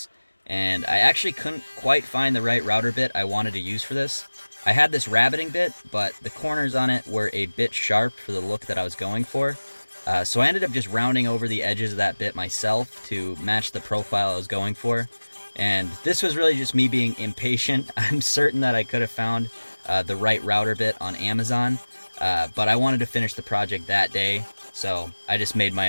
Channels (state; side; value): inverted; both; correlation -1.00